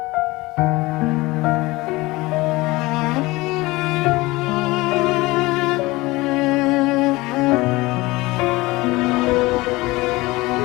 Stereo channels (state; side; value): quieter; right; 21.2 dB